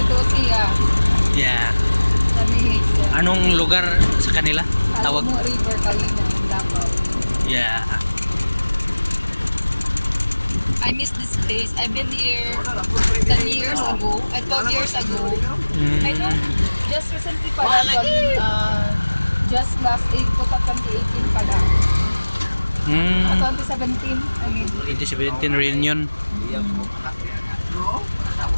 siya. Yeah. Kami siya. Anong lugar sa kanila? Tawag? Alamo River, Kalina, Davao. Yeah. I miss this place. I've been here 10 years ago, 12 years ago. I know, just recently pala, just last April 2018 pala. 2017, I mean. 2017 reunion.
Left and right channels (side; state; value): both; inverted; correlation -1.00